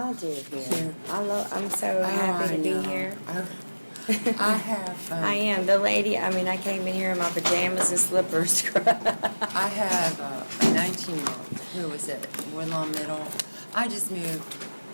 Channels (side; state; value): both; inverted; correlation -1.00